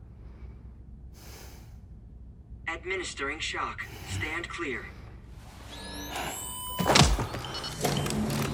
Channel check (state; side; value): identical; both; correlation 1.00